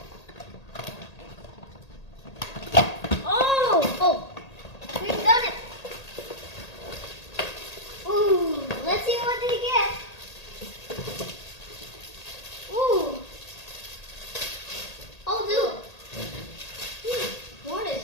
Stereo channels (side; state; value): right; late; 1.8 ms